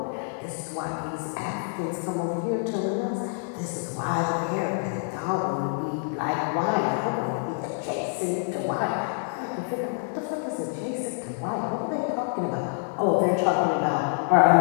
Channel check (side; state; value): right; silent; 60 dB below the other